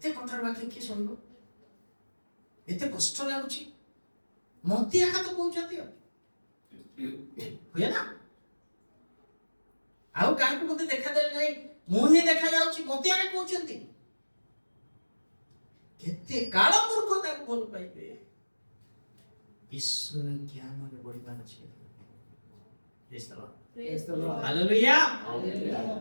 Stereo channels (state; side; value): inverted; both; correlation -1.00